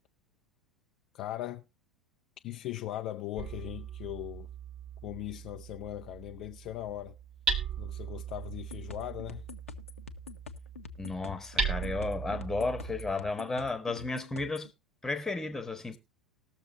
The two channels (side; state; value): both; normal; correlation 0.59